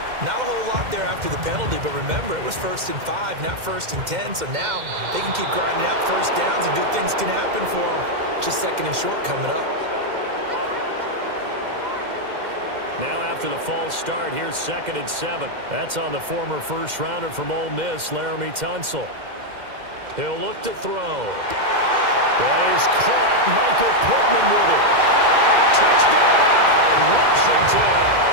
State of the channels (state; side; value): late; left; 2.1 ms